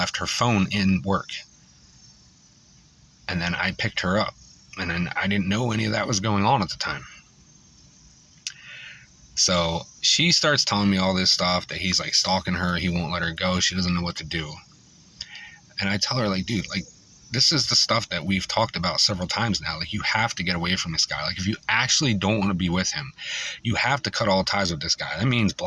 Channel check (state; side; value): identical; both; correlation 1.00